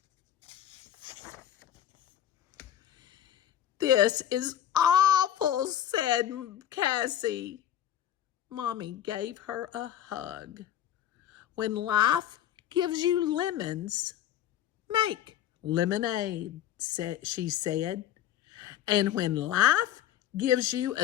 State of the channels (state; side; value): quieter; right; 11.1 dB